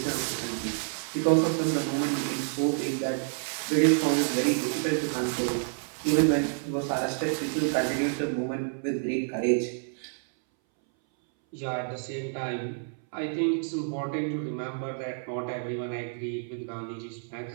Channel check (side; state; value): left; silent; 59 dB below the other